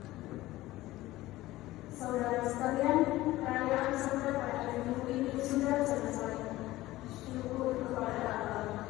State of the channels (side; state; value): right; quieter; 17.1 dB